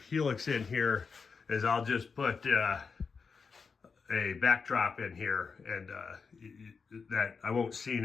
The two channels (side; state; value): right; quieter; 5.3 dB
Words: in here, is I'll just put a backdrop in here, and that I won't